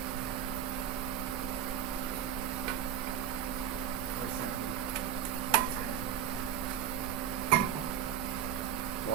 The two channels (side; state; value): left; quieter; 9.4 dB